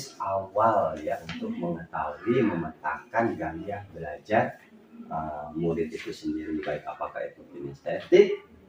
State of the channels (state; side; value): identical; both; correlation 1.00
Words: awal ya, untuk mengetahui memetakan gaya belajar murid itu sendiri, baik apakah itu kinestetik,